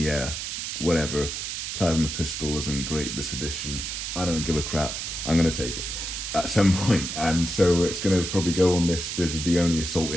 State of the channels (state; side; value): noise; right; hiss, 5 dB below the sound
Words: whatever. Plasma pistol isn't great this edition. I don't give a crap. I'm going to take it at some point. And so it's going to probably go on this. This is the only assault